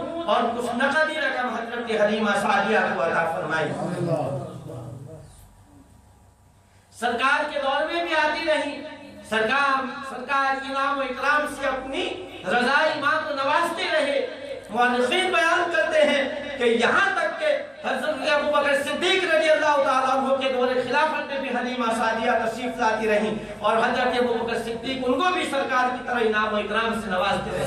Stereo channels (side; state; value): both; identical; correlation 1.00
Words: اور کچھ نقدی رقم حضرت حلیمہ سعدیہ کو عطا فرمائی۔ سرکار کے دور میں بھی آتی رہی، سرکار انعام و اکرام سے اپنی رضائی ماں کو نوازتے رہے۔ مورخین بیان کرتے ہیں کہ یہاں تک کہ حضرت ابوبکر صدیق رضی اللہ تعالیٰ عنہ کے دور خلافت میں بھی حلیمہ سعدیہ تشریف لاتی رہیں، اور حضرت ابوبکر صدیق ان کو بھی سرکار کی طرح انعام و اکرام سے نوازتے